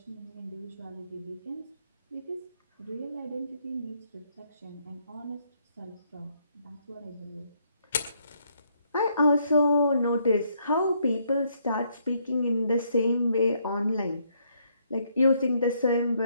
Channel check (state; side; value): inverted; both; correlation -0.72